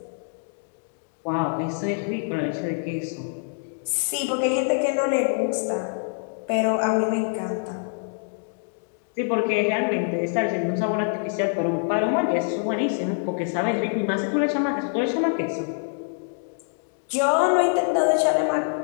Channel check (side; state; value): right; silent; digital silence